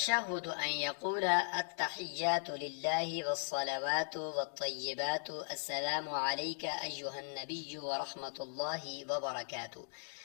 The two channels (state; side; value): silent; right; digital silence